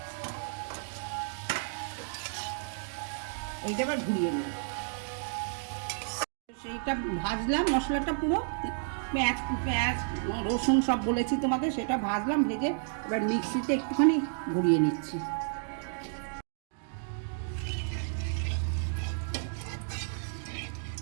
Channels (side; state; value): left; silent; digital silence